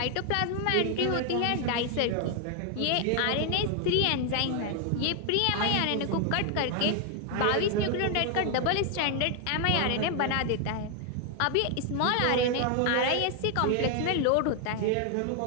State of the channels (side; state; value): both; different; correlation 0.00